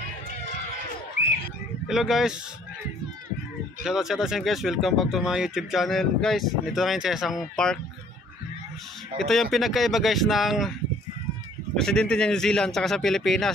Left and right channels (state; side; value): normal; both; correlation 0.58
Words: Hello guys. Shoutout sa guys, welcome back to my YouTube channel. Guys, dito na ngayon sa isang park. Ito yung pinagkaiba guys ng presidente ng New Zealand tsaka sa